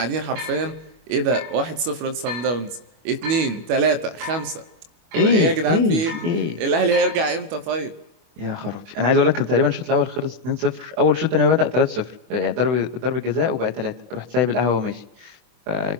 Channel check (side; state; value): left; late; 25 ms